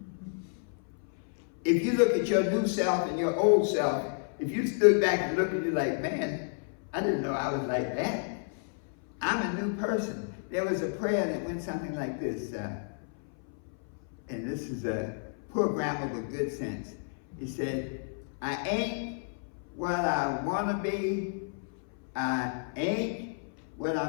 If you look at your new self and your old self, if you stood back and looked at you like, man, I didn't know I was like that. I'm a new person. There was a prayer that went something like this, and this is a poor grammar with good sense. He said, I ain't what I want to be. I ain't what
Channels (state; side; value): silent; right; 57 dB below the other